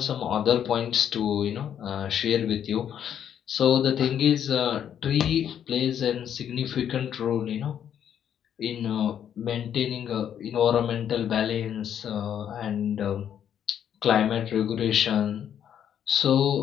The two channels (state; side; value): quieter; right; 9.3 dB